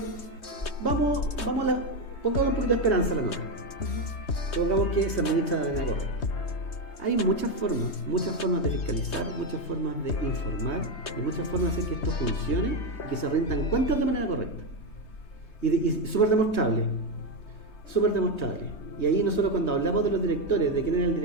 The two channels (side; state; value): right; late; 3.2 ms